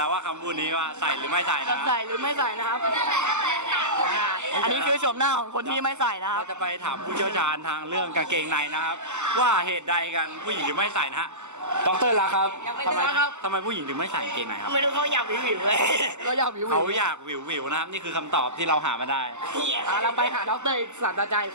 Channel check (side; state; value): left; late; 0.84 ms